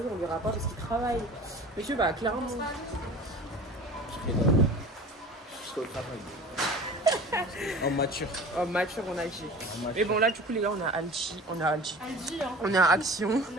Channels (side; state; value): both; normal; correlation 0.40